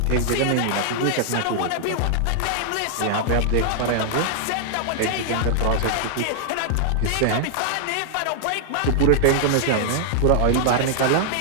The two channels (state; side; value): different; both; correlation -0.01